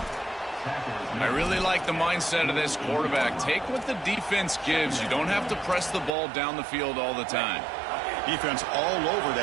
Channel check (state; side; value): drops out; left; at 6.1 s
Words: I really like the mindset of this quarterback. Take what the defense gives. You don't have to press the ball down the field all the time. Defense all over